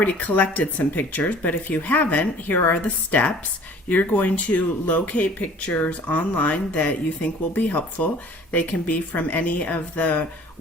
collected some pictures, but if you haven't, here are the steps. You're going to locate pictures online that you think will be helpful. They can be from any of the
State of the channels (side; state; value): both; normal; correlation 0.50